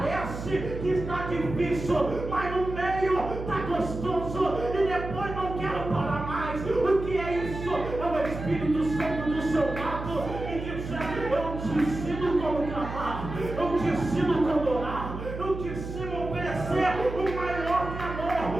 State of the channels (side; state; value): right; noise; hum, 8 dB below the sound